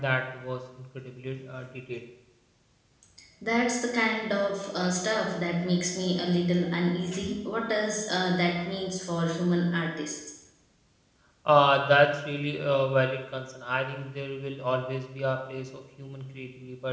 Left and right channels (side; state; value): both; identical; correlation 1.00